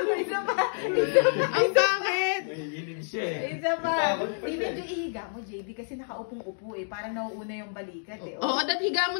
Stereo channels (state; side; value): silent; right; digital silence